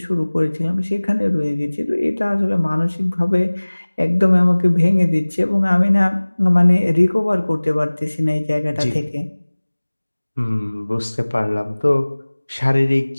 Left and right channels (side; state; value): both; inverted; correlation -1.00